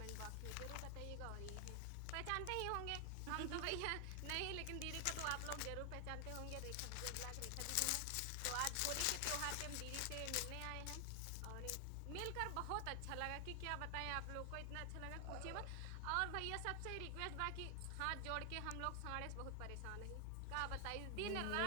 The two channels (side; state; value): both; different; correlation 0.00